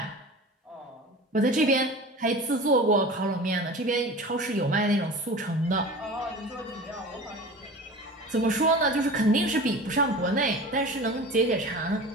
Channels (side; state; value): both; normal; correlation 0.36